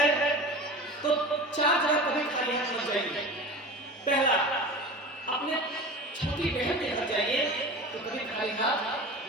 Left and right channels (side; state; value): both; normal; correlation 0.33